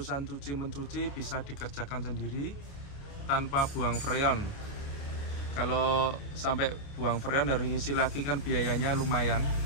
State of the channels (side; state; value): right; late; 29 ms